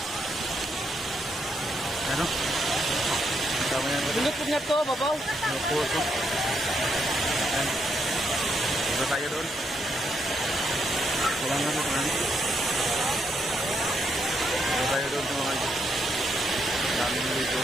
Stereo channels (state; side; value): normal; both; correlation 0.77